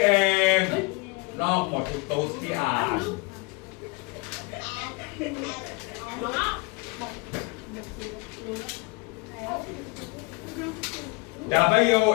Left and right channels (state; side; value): quieter; right; 28.4 dB